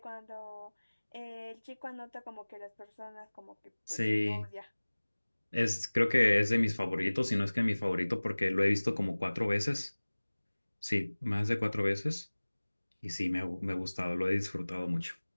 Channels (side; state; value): both; inverted; correlation -1.00